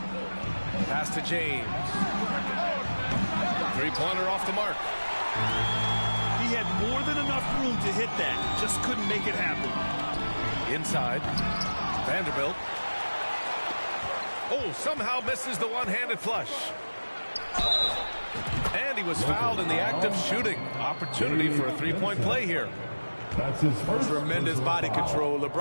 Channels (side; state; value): both; inverted; correlation -1.00